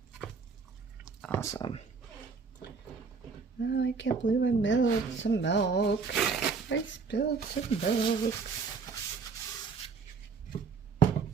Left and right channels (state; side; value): quieter; left; 5.1 dB